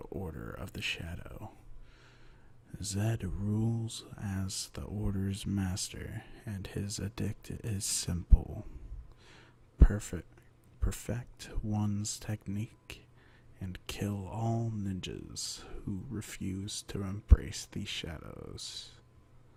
of the Shadow. Zed rules as the Order's master, and his edict is simple. Perfect one's technique, and kill all ninjas who refuse to embrace the shadows.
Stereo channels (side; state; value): both; identical; correlation 1.00